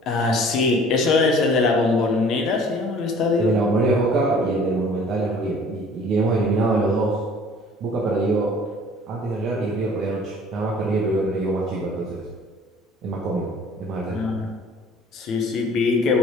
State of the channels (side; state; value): both; normal; correlation 0.51